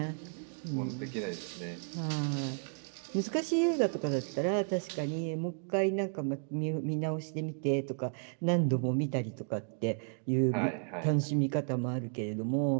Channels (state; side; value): silent; left; 56 dB below the other